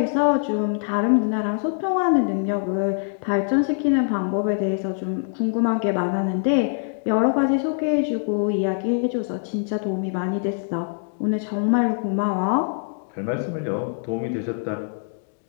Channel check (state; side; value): silent; right; digital silence